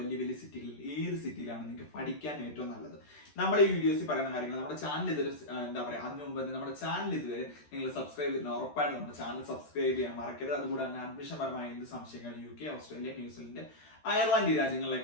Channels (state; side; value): late; right; 13 ms